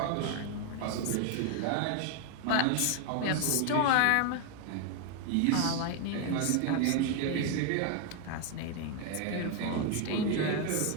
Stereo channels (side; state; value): both; different; correlation 0.01